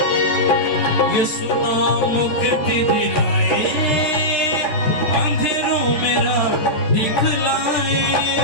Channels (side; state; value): right; late; 14 ms